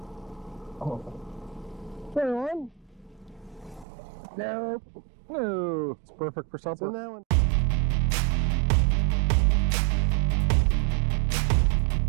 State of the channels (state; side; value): drops out; left; at 3.9 s